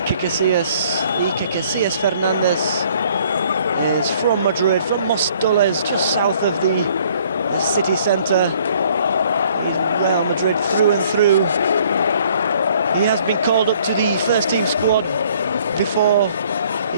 Casillas Fernandez is from Madrid, from Mostoles, just south of the city centre. He's Real Madrid through and through. He has been called up to the first team squad before.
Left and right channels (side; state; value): both; inverted; correlation -0.60